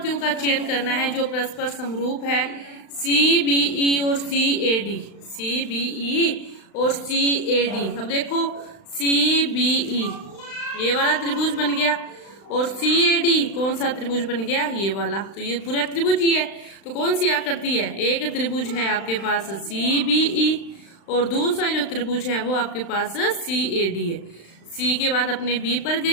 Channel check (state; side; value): late; right; 35 ms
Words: का चयन करना है जो परस्पर समरूप है, सी बी ई और सी A D, C B E और सी ए डी। अब देखो सी बी ई ये वाला त्रिभुज बन गया, और सी ए डी कौन सा त्रिभुज बन गया, ये वाला। तो ये पूरा त्रिभुज ही है। तो कौन सी आकृति है, एक त्रिभुज है आपके पास सी बी ई, और दूसरा जो त्रिभुज है वो आपके पास सी ए डी है। सी के बाद अपने बी पर